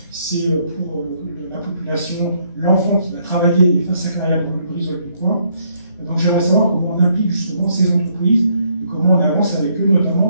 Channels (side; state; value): both; inverted; correlation -0.70